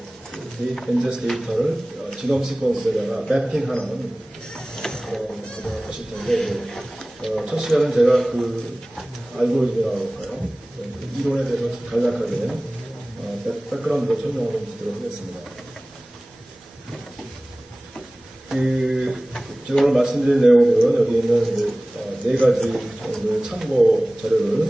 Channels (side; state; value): both; normal; correlation 0.98